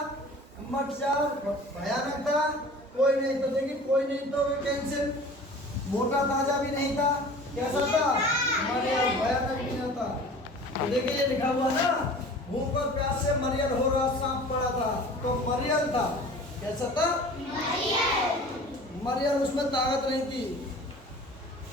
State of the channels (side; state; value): both; normal; correlation 0.42